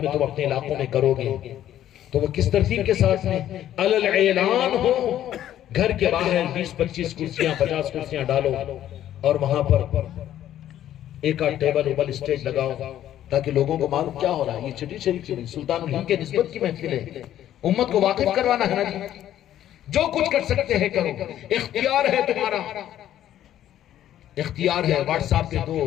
میں تم اپنے علاقوں میں کرو گے تو وہ کس ترتیب کے ساتھ میں علل اعلان ہو. گھر کے باہر 20-25 کرسیاں 50 کرسیاں ڈالو اور وہاں پر ایک آدھ ٹیبل اوبل اسٹیج لگاؤ تاکہ لوگوں کو معلوم کیا ہو رہا ہے. یہ چھٹی شریف کی سلطان الہند کے نسبت کی محفل ہے, امت کو واقف کروانا ہے نا جی. جو کچھ کر سکتے ہیں کرو, اختیار ہے تمہارا, اختیار ہے. واٹس ایپ پہ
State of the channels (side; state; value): right; quieter; 11.8 dB